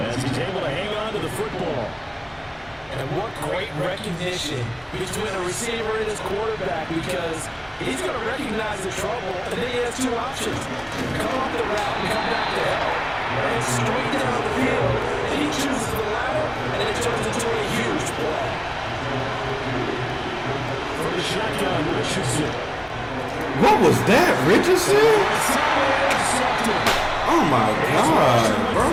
as he's able to hang on to the football. And what great recognition between a receiver and his quarterback, because he's going to recognize the trouble, and then he has two options. Come off the route and come back to help. And straight down the field, and he chooses the latter, and it turns into a huge play. For the shotgun, Richardson. What was that, Richardson? Oh my God,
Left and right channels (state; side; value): identical; both; correlation 1.00